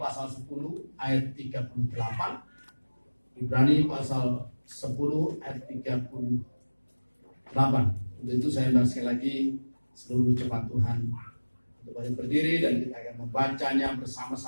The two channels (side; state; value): both; inverted; correlation -1.00